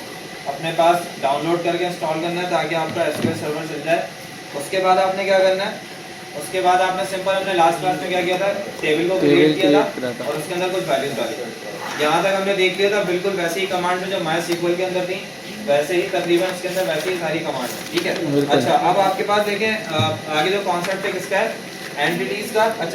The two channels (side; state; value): both; identical; correlation 1.00